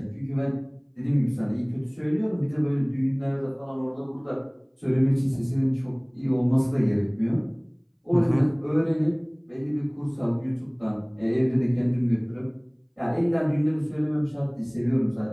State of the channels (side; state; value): both; identical; correlation 1.00